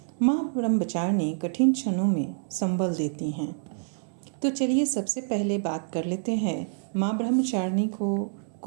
माँ ब्रह्मचारिणी कठिन क्षणों में संबल देती हैं। तो चलिए सबसे पहले बात कर लेते हैं माँ ब्रह्मचारिणी को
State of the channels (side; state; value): left; silent; digital silence